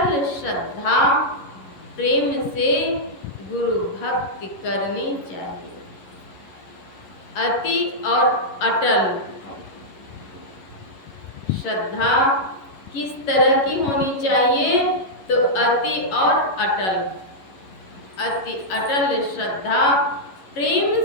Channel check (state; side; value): late; right; 11 ms